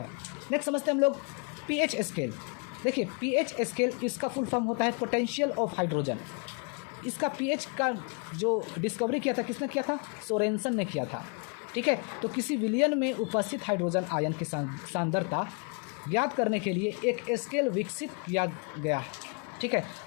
नेक्स्ट समझते हैं हम लोग पीएच स्केल। देखिए, पीएच स्केल इसका फुल फॉर्म होता है पोटेंशियल ऑफ हाइड्रोजन। इसका पीएच का जो डिस्कवरी किया था किसने किया था? सोरेनसन ने किया था, ठीक है। तो किसी विलयन में उपस्थित हाइड्रोजन आयन की सांद्रता ज्ञात करने के लिए एक स्केल विकसित किया गया है, ठीक है,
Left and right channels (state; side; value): quieter; right; 34.9 dB